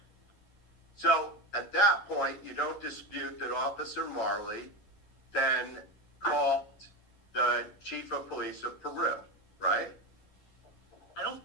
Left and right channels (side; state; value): right; late; 11 ms